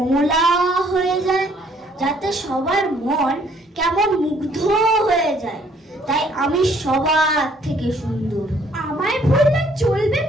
হয়ে যায়, যাতে সবার মন কেমন মুগ্ধ হয়ে যায়। তাই আমি সবার থেকে সুন্দর। আমায় ভুললে চলবে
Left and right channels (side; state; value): both; normal; correlation 0.63